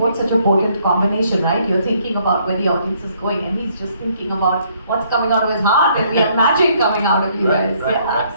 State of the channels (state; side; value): inverted; both; correlation -0.67